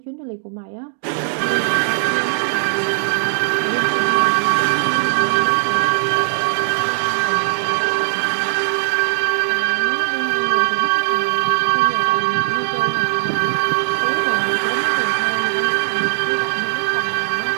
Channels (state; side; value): silent; left; 66 dB below the other